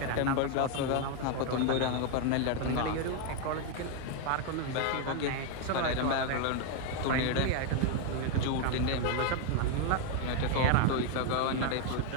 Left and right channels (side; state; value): both; different; correlation 0.01